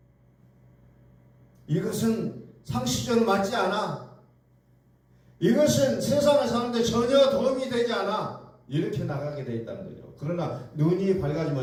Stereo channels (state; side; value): identical; both; correlation 1.00